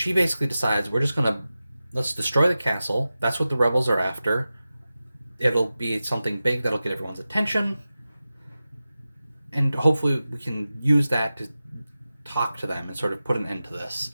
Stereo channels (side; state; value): both; inverted; correlation -0.94